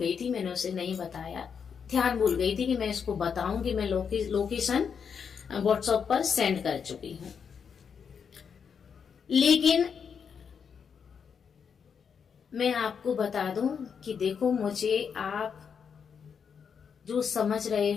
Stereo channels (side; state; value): right; quieter; 6.7 dB